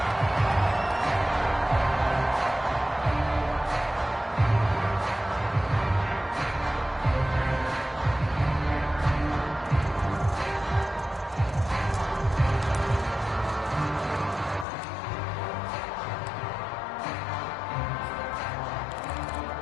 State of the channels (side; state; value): right; drops out; at 14.7 s